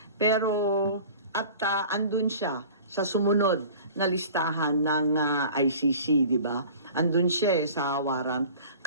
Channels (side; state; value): both; inverted; correlation -0.43